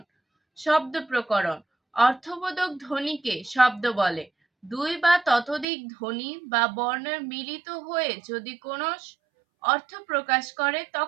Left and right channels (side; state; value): left; drops out; at 5.7 s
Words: শব্দ প্রকরণ, অর্থবোধক ধ্বনিকে শব্দ বলে। 2 বা ততোধিক ধ্বনি বা বর্ণের মিলিত হয়ে যদি কোনো অর্থ প্রকাশ করে